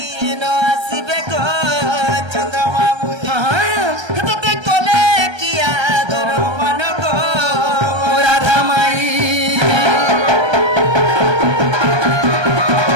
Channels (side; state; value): left; late; 1.3 ms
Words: ন আসিবে গো চন্দ্রমামু তোতে কলে কি আদর মান গো মোরা রাধামাই